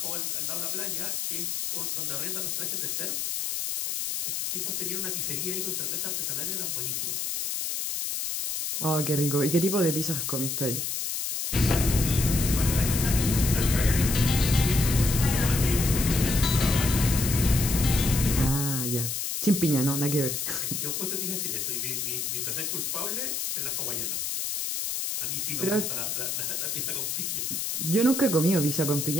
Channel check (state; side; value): noise; left; hiss, 2 dB below the sound